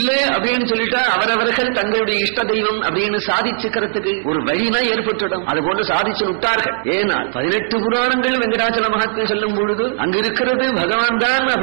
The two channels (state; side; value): silent; left; digital silence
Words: அப்படின்னு சொல்லிட்டா அவரவர்கள் தங்களுடைய இஷ்ட தெய்வம் அப்படின்னு சாதிச்சுக்கிறதுக்கு ஒரு வழினா ஏற்பட்டுடும். அது போன்று சாதிச்சு விட்டார்கள். ஏன்னா 18 புராணங்கள் வெங்கடாச்சல மகத்துவம் சொல்லும் பொழுது அங்க இருக்கிறது பகவான் தான்